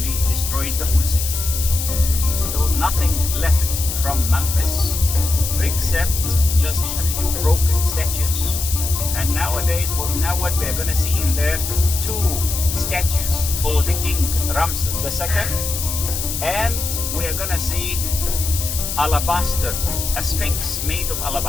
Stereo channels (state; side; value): noise; left; hiss, 4 dB below the sound